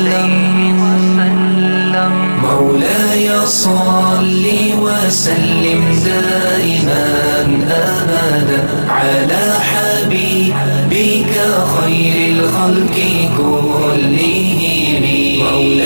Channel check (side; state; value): both; inverted; correlation -1.00